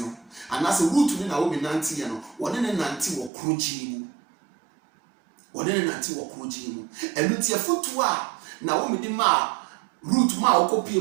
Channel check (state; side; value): drops out; left; at 3.3 s